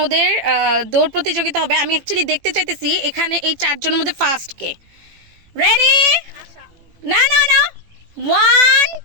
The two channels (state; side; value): late; left; 18 ms